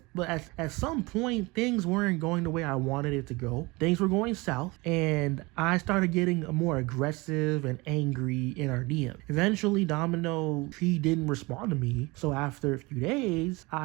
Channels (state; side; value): quieter; left; 24.3 dB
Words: at some point things weren't going the way I wanted it to go. Things were going south, and I started getting more aggressive and angry in our DM. Eventually, Domino, he didn't respond to me. So after a few days,